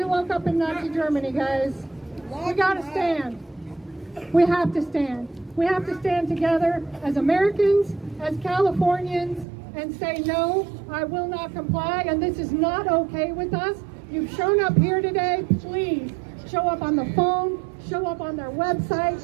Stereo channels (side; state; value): left; drops out; at 9.5 s